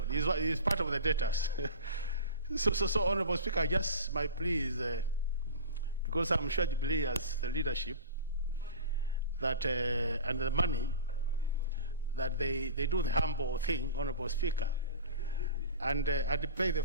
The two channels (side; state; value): both; inverted; correlation -0.33